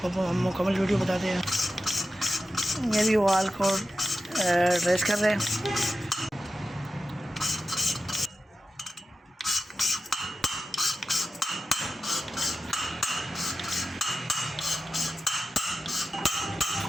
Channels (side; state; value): both; normal; correlation 0.92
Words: हम मुकम्मल वीडियो बताते हैं। ये भी वाल को ड्रेस कर रहे हैं।